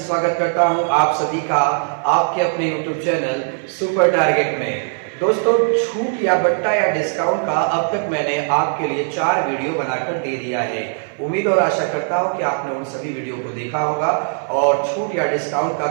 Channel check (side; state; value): left; silent; 58 dB below the other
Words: स्वागत करता हूं आप सभी का आपके अपने यूट्यूब चैनल सुपर टारगेट में। दोस्तों, छूट या बट्टा या डिस्काउंट का अब तक मैंने आपके लिए 4 वीडियो बनाकर दे दिया है। उम्मीद और आशा करता हूं कि आपने उन सभी वीडियो को देखा होगा और छूट या डिस्काउंट का